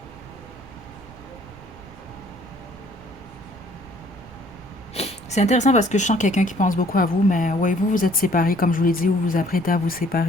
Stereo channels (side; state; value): right; noise; rumble, 21 dB below the sound